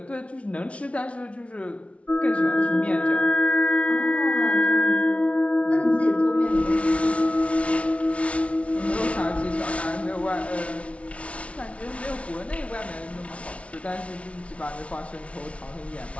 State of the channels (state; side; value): late; right; 0.062 ms